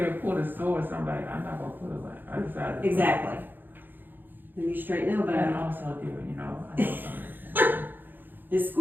pull the sword. So I'm like, I'm not gonna pull it. Like, I decided. to- Exactly. Then you straighten the And elbow. also do it, you know. I know something. Just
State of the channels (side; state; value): left; late; 0.092 ms